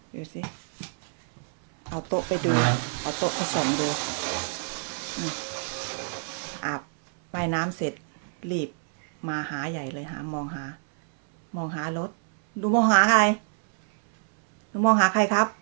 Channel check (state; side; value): silent; left; 61 dB below the other